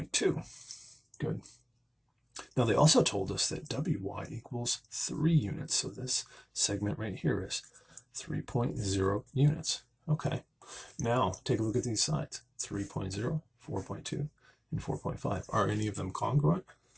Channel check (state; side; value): identical; both; correlation 1.00